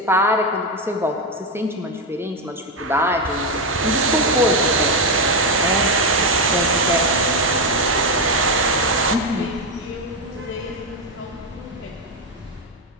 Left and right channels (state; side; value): normal; both; correlation 0.08